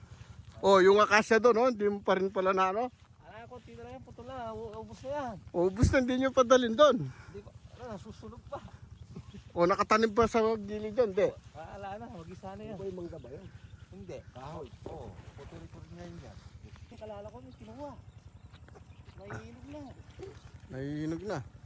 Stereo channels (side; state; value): both; identical; correlation 1.00